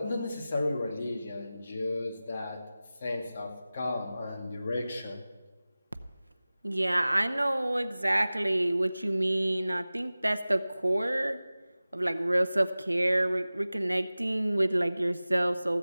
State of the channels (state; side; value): inverted; both; correlation -0.97